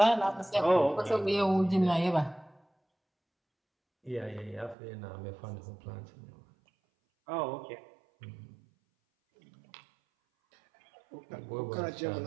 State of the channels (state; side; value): drops out; left; at 4.8 s